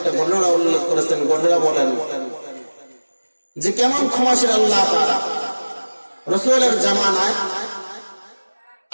ঘটনা উল্লেখ করেছেন। ঘটনা বলেন যে কেমন ক্ষমাশীল আল্লাহ তাআলা। রাসূলের জামানায়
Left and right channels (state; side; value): inverted; both; correlation -1.00